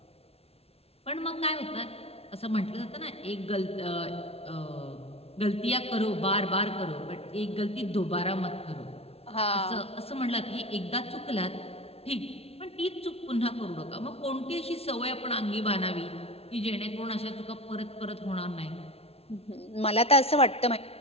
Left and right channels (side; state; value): right; late; 0.29 ms